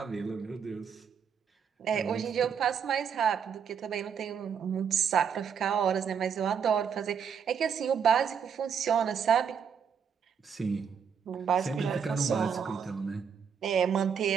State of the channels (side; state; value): left; quieter; 7.1 dB